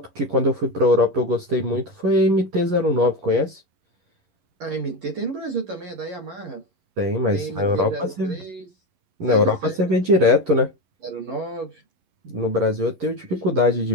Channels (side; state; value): left; late; 11 ms